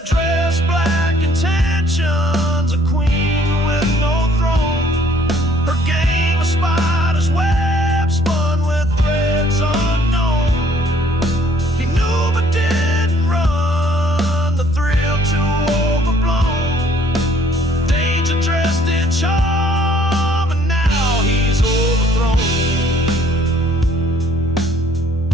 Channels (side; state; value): both; normal; correlation 0.60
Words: dress, black intentions, a queen with no throne. Her game of spiders web spun with threads unknown. He knew but didn't run, the thrill too overblown. Danger dressed in charm, and now he's overthrown.